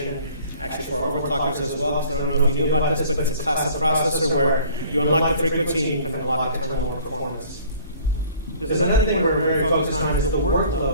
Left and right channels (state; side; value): inverted; both; correlation -0.52